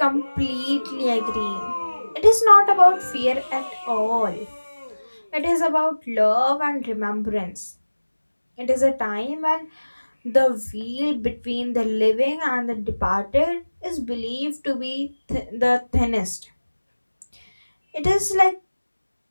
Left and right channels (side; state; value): both; inverted; correlation -1.00